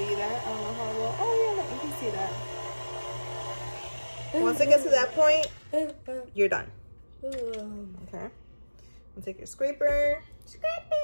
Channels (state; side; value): inverted; both; correlation -1.00